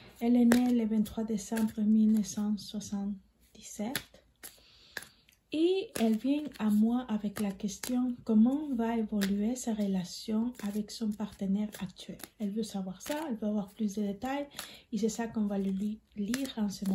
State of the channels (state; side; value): identical; both; correlation 1.00